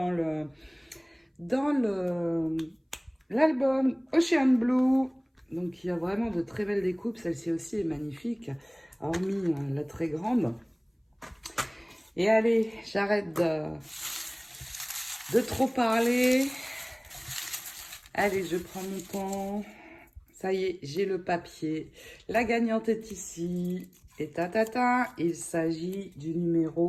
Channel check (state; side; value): identical; both; correlation 1.00